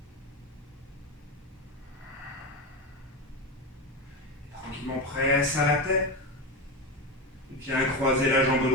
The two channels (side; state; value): both; normal; correlation 0.17